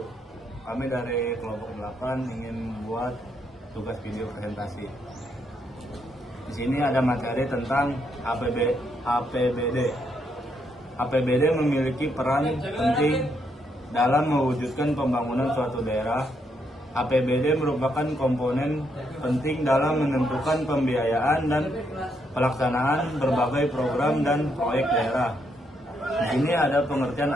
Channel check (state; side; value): normal; both; correlation 0.76